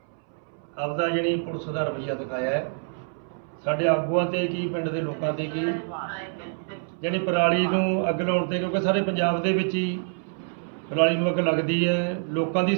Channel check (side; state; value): left; silent; 61 dB below the other